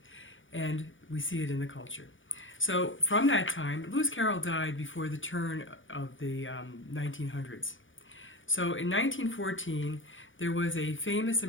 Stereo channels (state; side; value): late; right; 0.57 ms